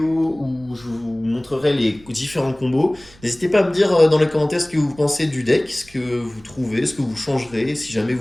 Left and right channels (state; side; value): noise; right; rumble, 25 dB below the sound